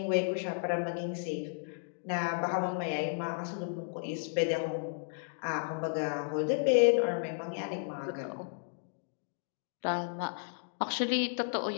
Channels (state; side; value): silent; right; digital silence